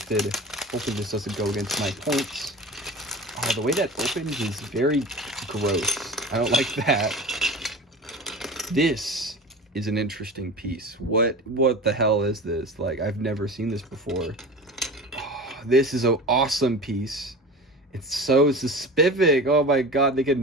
Hopefully this doesn't go against my points. Oh, the way that opens is very gross. I don't like that. This is an interesting piece. What the hell is this? Like, I've never seen this before. Oh, this is an awesome piece. It's so specific. Oh my god, they could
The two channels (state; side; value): normal; both; correlation 0.34